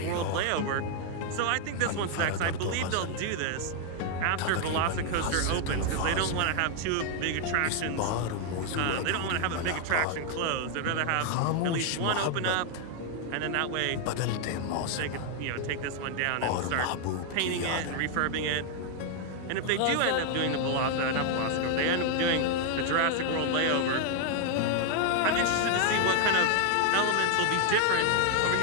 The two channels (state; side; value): different; both; correlation 0.00